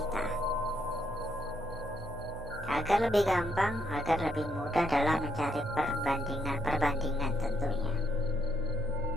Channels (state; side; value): noise; right; hum, 13 dB below the sound